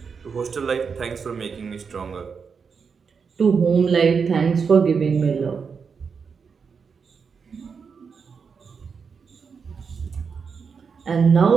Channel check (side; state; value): left; quieter; 5.8 dB